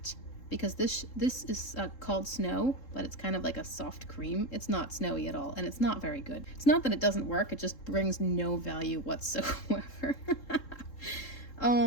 Because this is called Snow, but it's kind of like a soft cream. It's not snowy at all, and it's not very good. It's not that it doesn't work, it just brings no value whatsoever.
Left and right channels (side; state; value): right; late; 3.7 ms